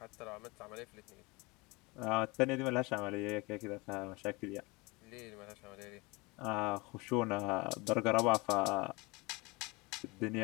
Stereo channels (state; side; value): quieter; right; 25.4 dB